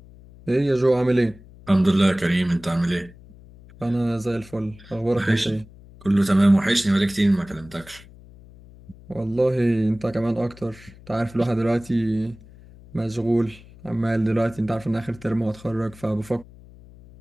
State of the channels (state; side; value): noise; left; hum, 22 dB below the sound